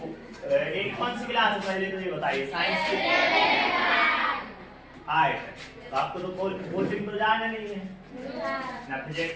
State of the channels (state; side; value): identical; both; correlation 1.00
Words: एक कौन सी क्लास है पहले तो ये बताइए? साइंस की 8। तो आपको तो कोचिंग तो जाना नहीं है ना,